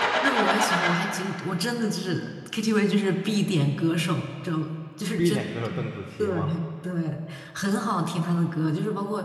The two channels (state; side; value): identical; both; correlation 1.00